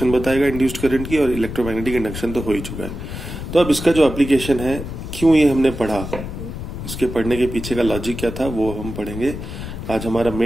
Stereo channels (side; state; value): left; noise; rumble, 8 dB below the sound